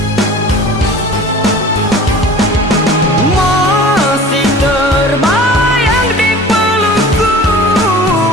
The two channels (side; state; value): both; normal; correlation 0.42